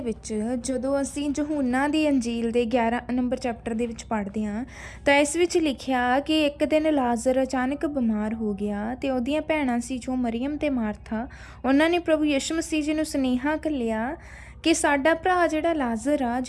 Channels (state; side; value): identical; both; correlation 1.00